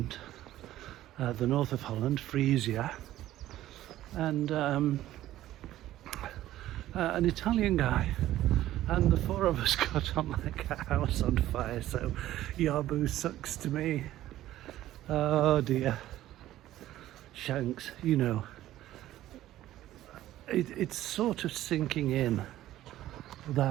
the north of Holland, Frisia, and an Italian guy, and the four of us got on like a house on fire. So Yabu sucks to me. Oh dear. Shanks, you know, it's sort of sinking in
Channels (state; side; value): quieter; left; 14.1 dB